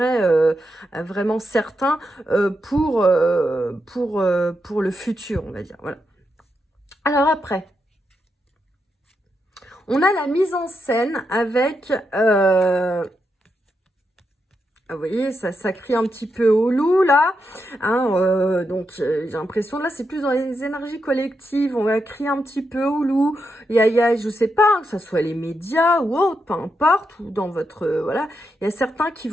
vraiment certain pour le futur, on va dire. Voilà. Alors après, on a la mise en scène avec... vous voyez, ça crie un petit peu au loup, là. Hein, donc, j'ai l'impression, là, c'est plus dans les énergies collectives. On va crier un petit peu au loup. Il y a, je sais pas, hein, que ce soit les médias ou autre, peu importe, ou dans votre... voilà. Il y a certains qui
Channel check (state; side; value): normal; both; correlation 0.84